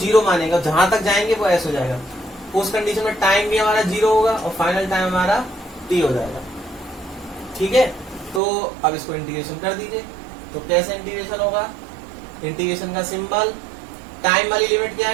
मानेगा, जहां तक जाएंगे वो s हो जाएगा। उस कंडीशन में टाइम भी हमारा 0 होगा और फाइनल टाइम हमारा t हो जाएगा। ठीक है, तो अब इसको इंटीग्रेशन कर दीजिए। तो कैसे इंटीग्रेशन होगा, इंटीग्रेशन का सिंबल, टाइम वाली लिमिट क्या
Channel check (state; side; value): drops out; left; at 8.4 s